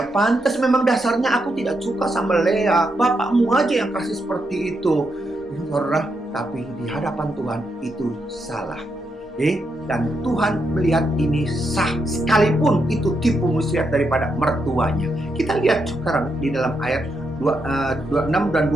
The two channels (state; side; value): normal; both; correlation 0.81